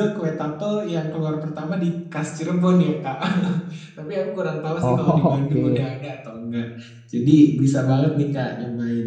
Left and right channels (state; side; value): identical; both; correlation 1.00